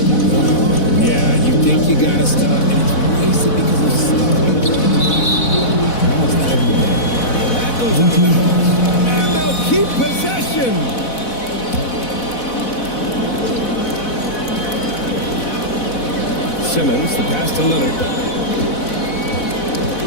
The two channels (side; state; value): right; late; 4.1 ms